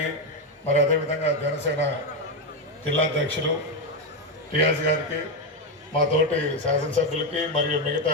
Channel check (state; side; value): normal; both; correlation 0.08